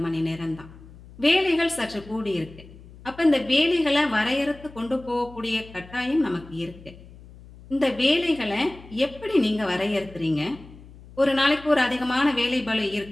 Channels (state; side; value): noise; left; hum, 20 dB below the sound